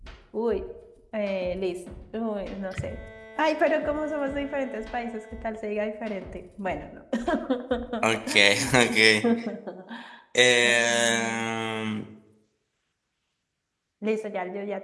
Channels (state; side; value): identical; both; correlation 1.00